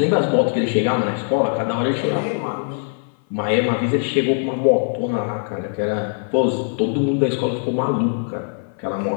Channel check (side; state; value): right; silent; 57 dB below the other